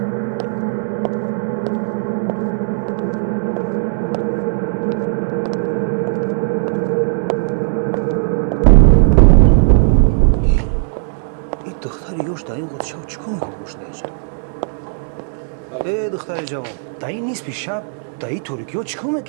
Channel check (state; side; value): silent; left; 68 dB below the other